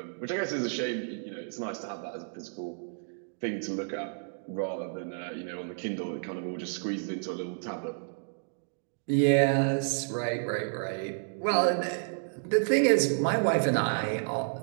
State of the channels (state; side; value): silent; left; digital silence